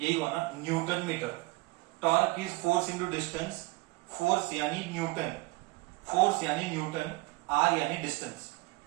हुआ ना, newton metre. Torque is force into distance, force यानी न्यूटन, फोर्स यानी न्यूटन, r यानी डिस्टेंस,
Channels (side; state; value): left; quieter; 22.1 dB